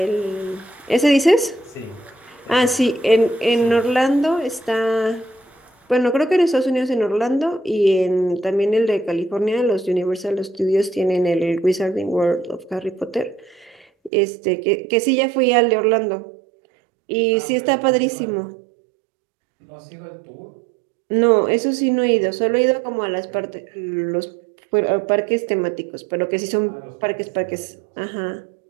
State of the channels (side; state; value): left; drops out; at 14.1 s